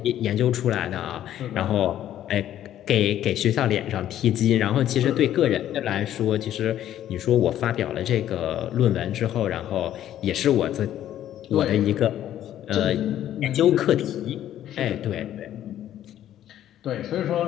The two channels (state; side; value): quieter; right; 11.8 dB